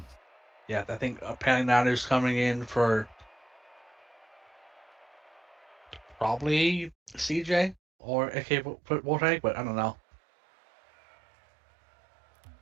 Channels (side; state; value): left; drops out; at 7.8 s